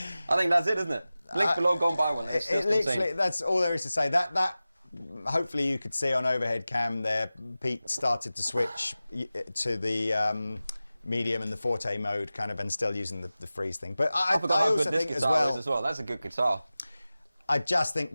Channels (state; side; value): inverted; both; correlation -0.96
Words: think that's it, isn't it? Link below, go and buy one. It's just literally, insane. that's all there is to say. That hopefully you could see on overhead cam there, Pete started to switch to the medium and the forte mode kind of, and still using the freeze thing. But I forgot how also good this think guitar is as well. That's a good guitar. I just think